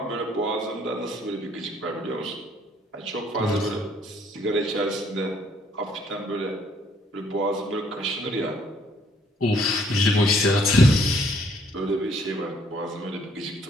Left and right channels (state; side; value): normal; both; correlation 0.64